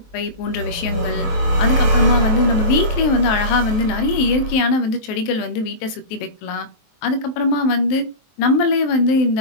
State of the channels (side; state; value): right; late; 23 ms